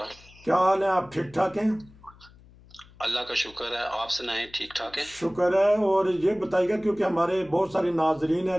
क्या हाल है? आप ठीक ठाक हैं? अल्लाह का शुक्र है, आप सुनाएं, ठीक ठाक है। शुक्र है। और ये बताइएगा, क्योंकि हमारे बहुत सारे नाजरीन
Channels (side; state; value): left; noise; hum, 24 dB below the sound